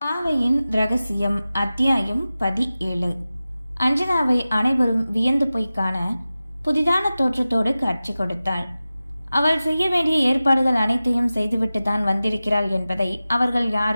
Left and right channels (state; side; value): inverted; both; correlation -0.95